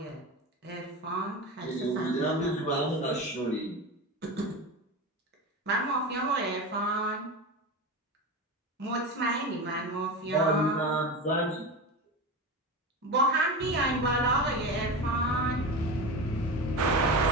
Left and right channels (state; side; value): normal; both; correlation 0.24